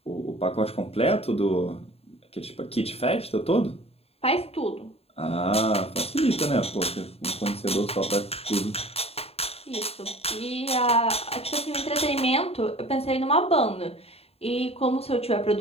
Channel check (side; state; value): right; late; 0.29 ms